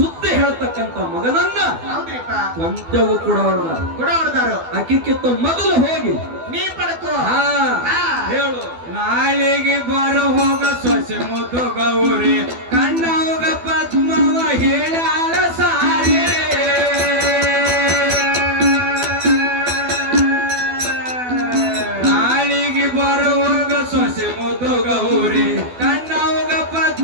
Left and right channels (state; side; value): late; left; 12 ms